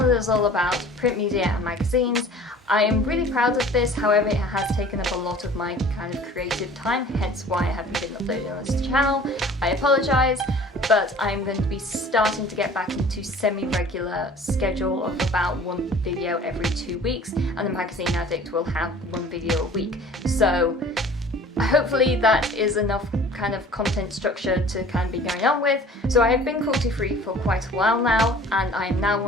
is all about print media and magazines. I am really proud of this, however it has taken up a lot of my kind of creative time, hence why I haven't been uploading on this channel. I apologise, but I'm going to be starting to get back into semi-regular schedule of about one video every 2 weeks, and the Magazine Addict will have one video a week. So hopefully that is enough kind of content structure to kind of be going on with. So I have been cruelty-free for quite a while now, and I am now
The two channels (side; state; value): both; normal; correlation 0.47